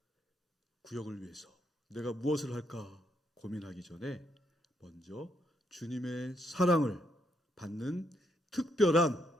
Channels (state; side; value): normal; both; correlation 0.76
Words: 구역을 위해서 내가 무엇을 할까 고민하기 전에 먼저 주님의 사랑을 받는 특별한